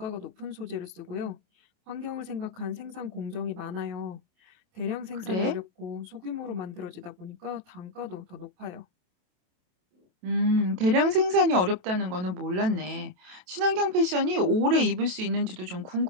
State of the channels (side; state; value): left; late; 27 ms